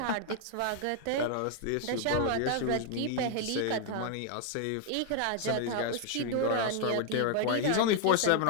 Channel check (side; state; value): both; different; correlation 0.00